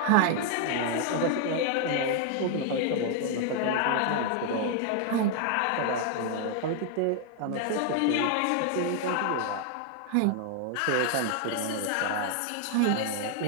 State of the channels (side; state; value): both; different; correlation 0.00